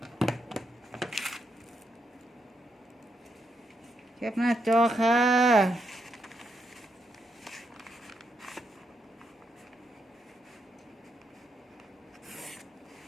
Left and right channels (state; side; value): normal; both; correlation 0.80